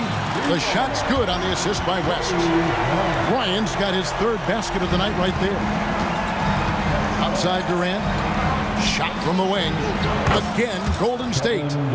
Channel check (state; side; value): identical; both; correlation 1.00